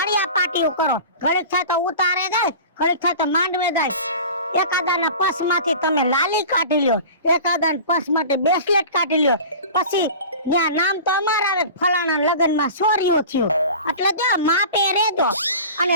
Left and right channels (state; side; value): inverted; both; correlation -0.37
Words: પાટીઓ કરો. ઘડીક થાય તો ઉતારે જાય ઘડીક થાય તો માંડવે જાય. એકાદાના પસમાંથી તમે લાલી કાઢી લ્યો એકાદાના પસ માટે બ્રેસલેટ કાઢી લ્યો. પછી ત્યાં નામ તો અમારા આવે ફલાણા લગનમાં સોરીઓ થયો એટલે જો માપે રહેજો